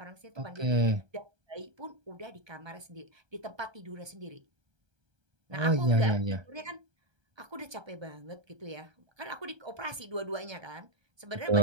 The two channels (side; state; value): left; late; 1.3 ms